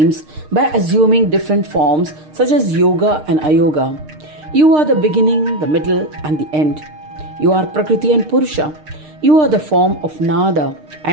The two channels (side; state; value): left; late; 6.6 ms